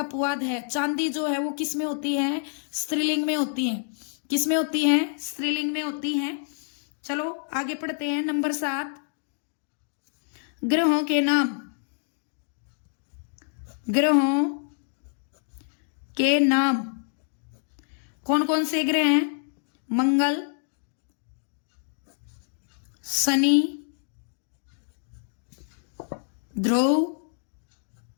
है। चांदी जो है वो किस में होती है? स्त्रीलिंग में होती है। किस में होती है? स्त्रीलिंग में होती है। चलो आगे पढ़ते हैं। नंबर 7, ग्रहों के नाम। ग्रहों के नाम कौन कौन से ग्रह हैं? मंगल, शनि, ध्रुव,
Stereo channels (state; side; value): silent; right; 60 dB below the other